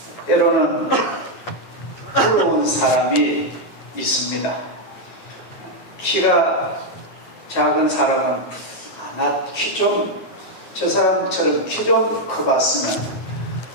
때로는 부러운 사람이 있습니다. 키가 작은 사람은 나 키 좀 저 사람처럼 키 좀 커봤으면,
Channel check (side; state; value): right; late; 9.3 ms